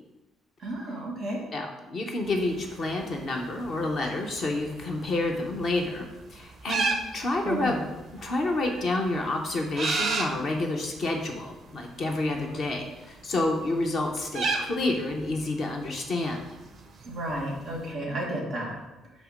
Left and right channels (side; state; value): both; normal; correlation 0.76